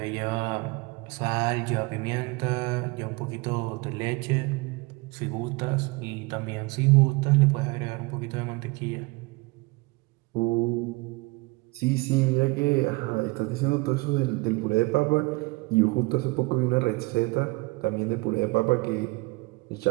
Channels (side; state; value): left; quieter; 25.0 dB